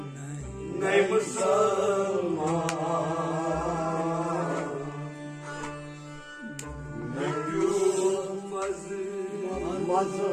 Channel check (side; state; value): both; identical; correlation 1.00